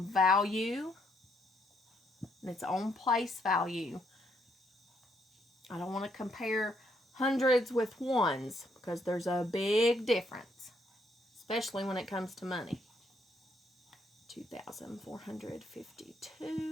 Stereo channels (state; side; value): normal; both; correlation 0.73